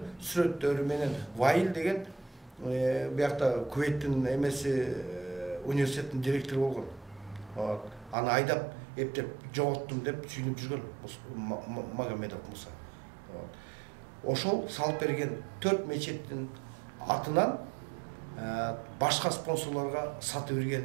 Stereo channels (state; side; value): drops out; left; at 8.2 s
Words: сүрөттөрү менен Ваил деген биякта Кувейттин эмеси университеттин директору болгон. Аны айдап, эптеп жоготтум деп сүйүнүп жүргөн Магомедов Муса. Ошол салып берген 4 мечеттин атынан башка спонсорлорго сатып